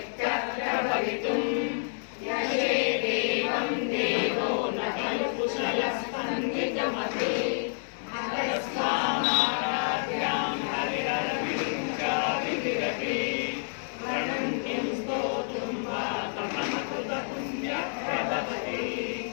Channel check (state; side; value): silent; right; 58 dB below the other